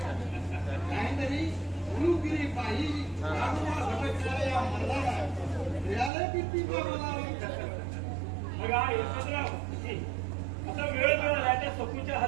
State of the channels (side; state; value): left; drops out; at 6.1 s